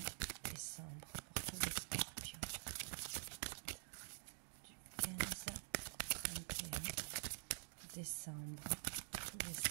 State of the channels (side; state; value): left; silent; digital silence